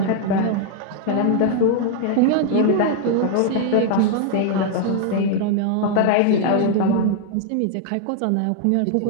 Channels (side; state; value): both; different; correlation 0.00